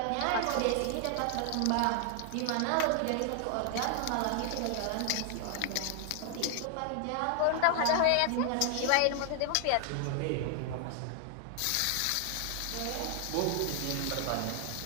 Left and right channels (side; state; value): both; different; correlation 0.00